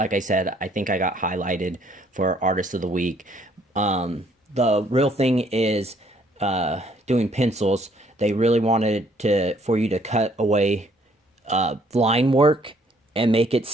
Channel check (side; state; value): both; normal; correlation 0.64